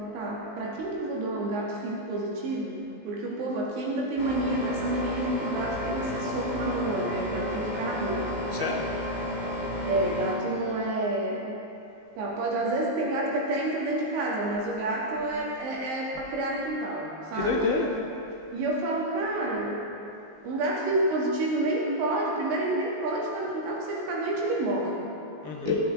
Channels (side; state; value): left; late; 19 ms